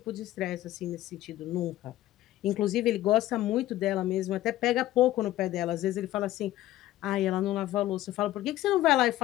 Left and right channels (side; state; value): right; quieter; 14.9 dB